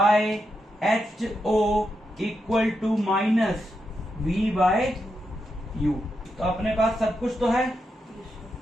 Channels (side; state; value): both; normal; correlation 0.85